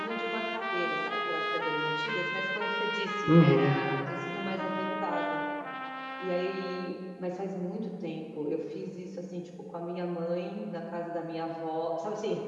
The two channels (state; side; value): identical; both; correlation 1.00